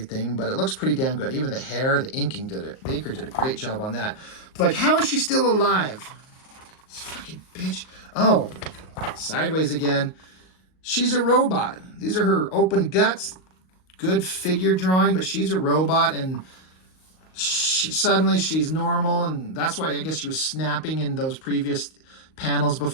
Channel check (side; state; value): right; late; 38 ms